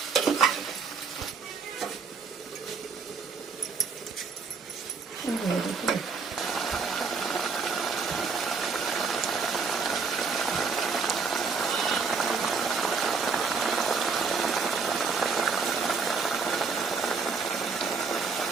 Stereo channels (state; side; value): quieter; left; 5.1 dB